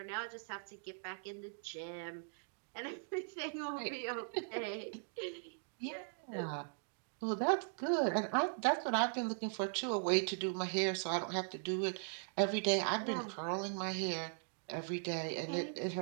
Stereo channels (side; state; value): left; silent; digital silence